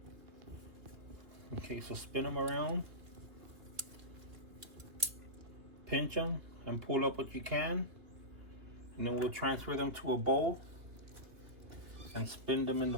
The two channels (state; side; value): late; left; 2.7 ms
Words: Okay, so spin them around, pinch them, and pull up what you can, and then we'll transfer them to a bowl and spin them in